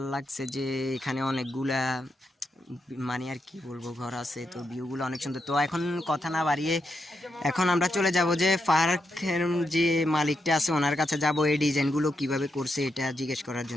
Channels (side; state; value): both; normal; correlation 0.83